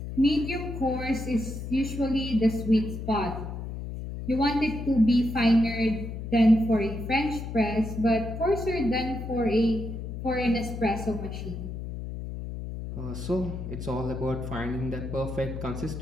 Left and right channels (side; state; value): left; noise; hum, 7 dB below the sound